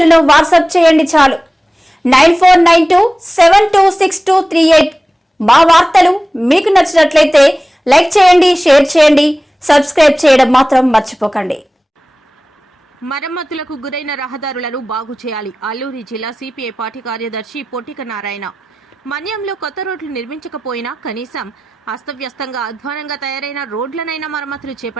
వాట్సాప్ చేయండి చాలు 9492726238। మా వార్తలు మీకు నచ్చినట్లయితే లైక్ చేయండి, షేర్ చేయండి, సబ్స్క్రైబ్ చేయడం మాత్రం మర్చిపోకండి। మరమ్మతులకు గురైన రహదారులను బాగు చేయాలి। అల్లూరి జిల్లా సిపిఐ పార్టీ కార్యదర్శి పొట్టిక నారాయణ మన్యంలో కొత్త రోడ్లు నిర్మించకపోయినా కనీసం అస్తవ్యస్తంగా అధ్వానంగా తయారైన రోడ్లనైనా మరమ్మతులు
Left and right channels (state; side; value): normal; both; correlation 0.96